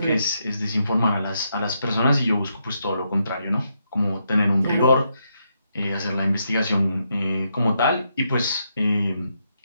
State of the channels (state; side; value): inverted; both; correlation -0.80